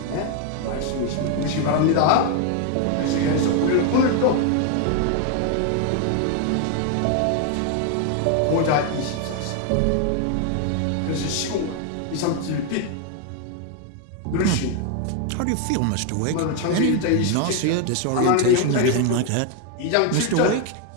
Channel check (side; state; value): both; different; correlation 0.01